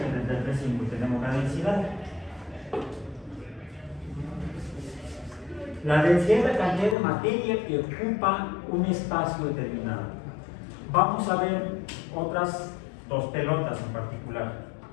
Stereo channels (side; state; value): right; drops out; at 7.0 s